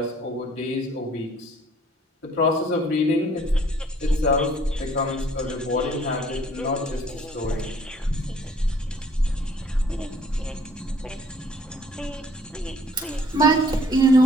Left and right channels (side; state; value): both; normal; correlation 0.58